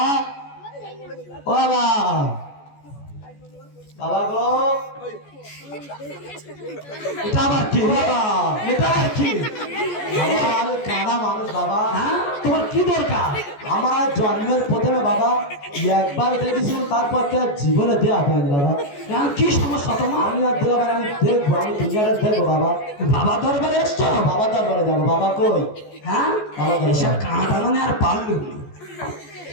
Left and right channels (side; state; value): right; late; 14 ms